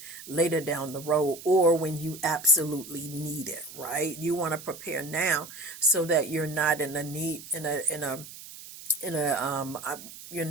later down the road or when you absolutely need it, right? You want to prepare now so that you're not you're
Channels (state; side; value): noise; right; hiss, 15 dB below the sound